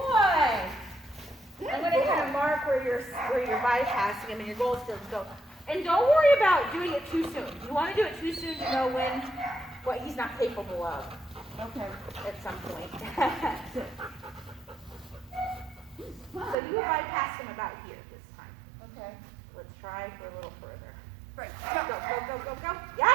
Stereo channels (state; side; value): drops out; left; at 16.6 s